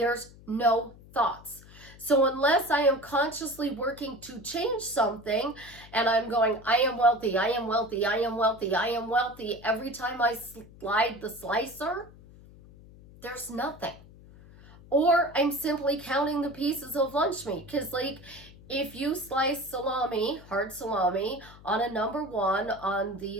no thoughts. So unless I am consciously working to change something and I'm going, I am wealthy, I am wealthy, I am wealthy, I am wealthy, every time I slide the slicer, there's nothing. Or I'm simply counting the pieces of lunch meat. Because like if you slice salami, hard salami, on a number 1 on the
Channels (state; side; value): noise; left; hum, 21 dB below the sound